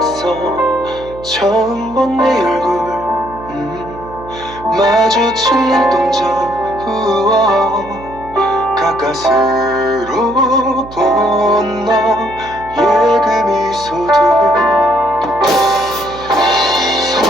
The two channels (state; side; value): noise; right; hum, 17 dB below the sound